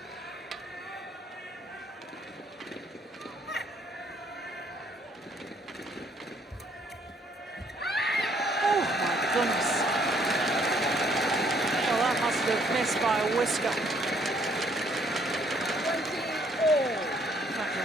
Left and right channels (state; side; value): normal; both; correlation 0.65